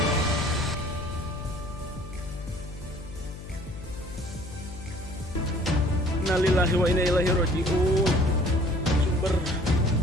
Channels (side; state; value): left; noise; hum, 13 dB below the sound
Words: Innalillahi wa inna ilaihi raji'un. Sumber